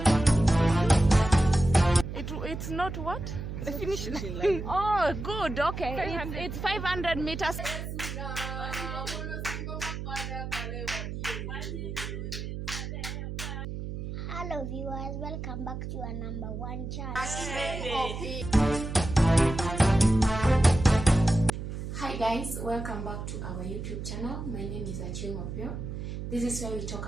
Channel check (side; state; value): right; noise; hum, 6 dB below the sound